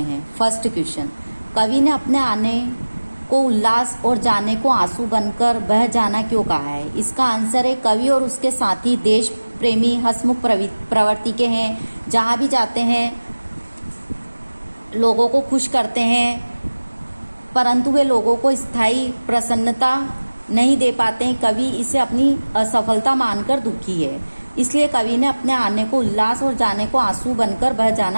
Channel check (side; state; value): both; inverted; correlation -1.00